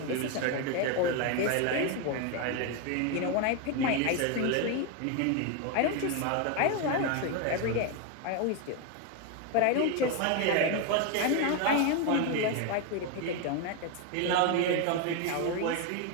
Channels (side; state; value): both; different; correlation 0.02